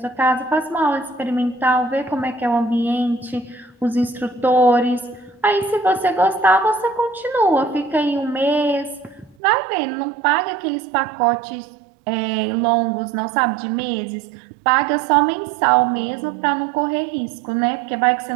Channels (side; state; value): left; drops out; at 9.3 s